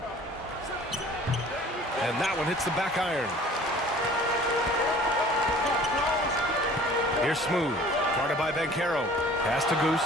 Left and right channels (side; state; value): both; normal; correlation 0.49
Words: And that one hits the back iron. Here's Smooth. Guarded by Banchero. Pass to Goose.